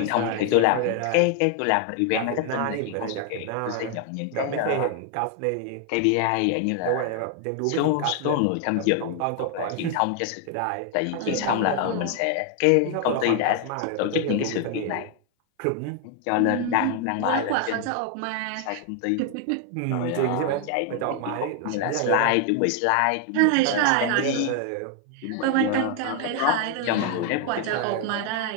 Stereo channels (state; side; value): different; both; correlation 0.00